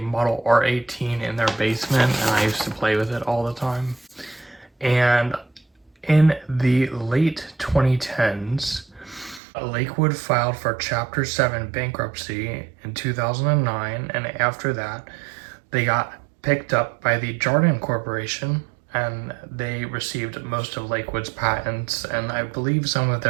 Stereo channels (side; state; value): left; drops out; at 9.4 s